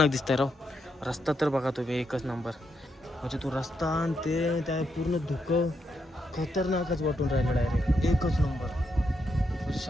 दिसतंय राव. रस्ता तर बघा तुम्ही एकच नंबर. म्हणजे तो रस्ता आणि ते त्या पूर्ण धुकं खतरनाकच वाटून राहिलं डायरेक्ट. एकच नंबर. म्हणजे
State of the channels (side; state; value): both; normal; correlation 0.81